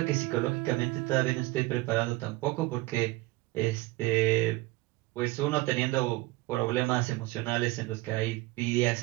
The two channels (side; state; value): left; quieter; 21.1 dB